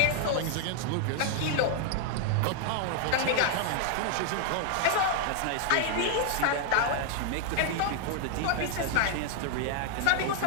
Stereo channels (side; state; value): both; different; correlation 0.00